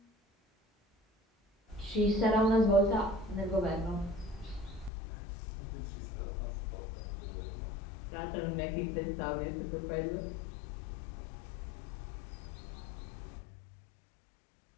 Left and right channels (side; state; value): right; drops out; at 4.9 s